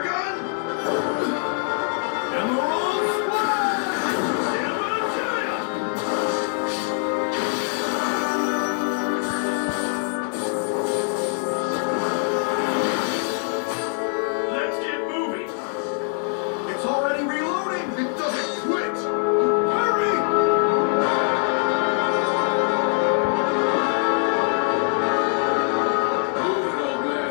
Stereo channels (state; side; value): silent; right; 57 dB below the other